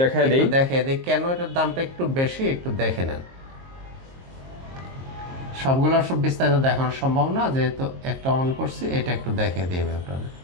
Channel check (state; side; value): late; left; 22 ms